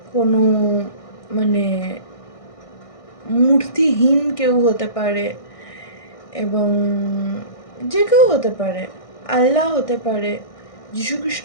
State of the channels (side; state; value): right; late; 1.6 ms